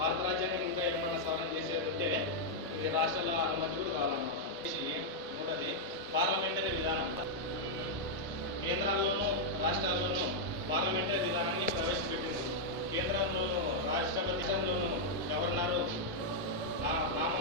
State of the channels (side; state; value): both; normal; correlation -0.04